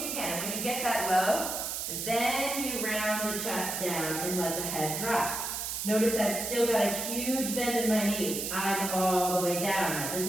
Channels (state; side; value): noise; right; hiss, 3 dB below the sound